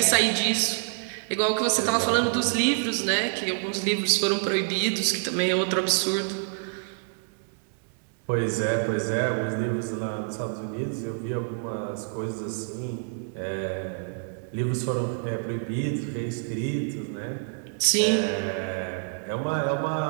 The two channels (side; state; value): left; silent; 60 dB below the other